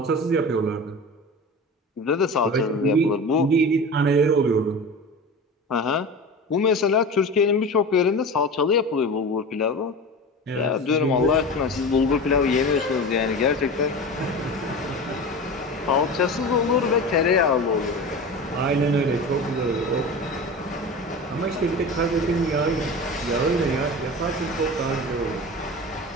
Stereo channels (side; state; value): both; normal; correlation 0.31